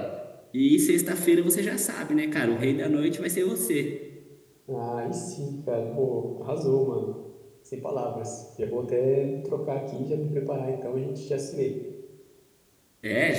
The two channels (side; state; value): both; identical; correlation 1.00